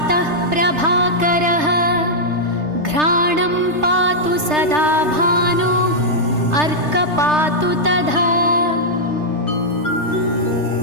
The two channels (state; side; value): late; left; 3.3 ms